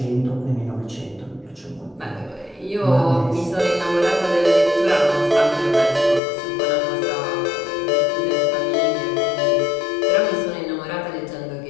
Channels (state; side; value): drops out; right; at 6.2 s